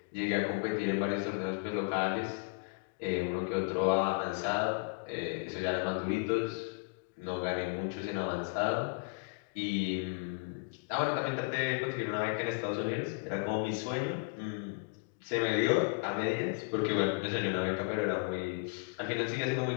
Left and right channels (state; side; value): quieter; right; 33.5 dB